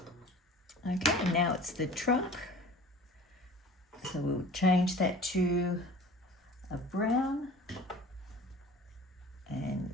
Okay, now it's the trunk. So we'll change that to a brown and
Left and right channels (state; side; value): normal; both; correlation 0.42